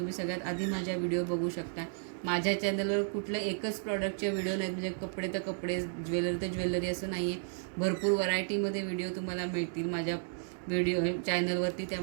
सगळ्यात आधी माझ्या व्हिडिओ बघू शकता. माझ्या चॅनलवर कुठलं एकच प्रॉडक्टचे व्हिडिओ नाहीत, म्हणजे कपडे तर कपडे, ज्वेलरी तर ज्वेलरी असं नाही आहे. भरपूर व्हरायटीमध्ये व्हिडिओ तुम्हाला मिळतील माझ्या व्हिडिओ चॅनलवरती.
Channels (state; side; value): silent; left; digital silence